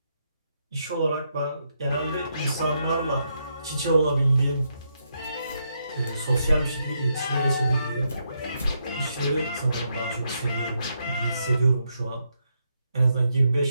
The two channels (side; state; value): both; inverted; correlation -0.80